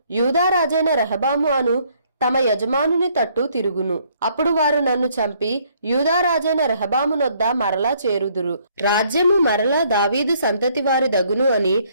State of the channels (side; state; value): both; inverted; correlation -0.66